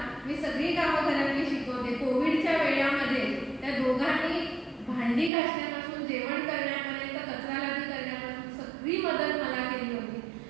मी सगळी कामं घरातली शिकवते. कोविडच्या वेळामध्ये त्या दोघांनी भांडी घासण्यापासून जेवण करण्यापर्यंत कचरा लादी करण्यापासून सगळी मदत मला केली होती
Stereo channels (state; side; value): drops out; left; at 5.3 s